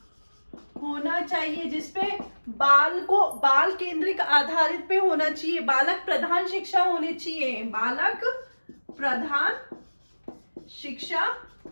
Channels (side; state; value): both; inverted; correlation -1.00